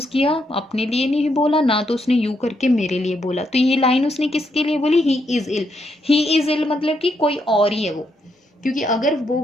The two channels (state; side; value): normal; both; correlation 0.78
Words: किया, अपने लिए नहीं बोला, ना तो उसने यू करके मेरे लिए बोला, तो ये लाइन उसने किसके लिए बोली, he is ill. He is इल मतलब कि कोई और ही है वो, क्योंकि अगर वो